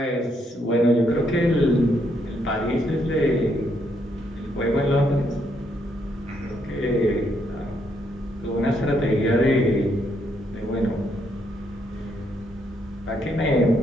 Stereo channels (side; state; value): both; normal; correlation 0.75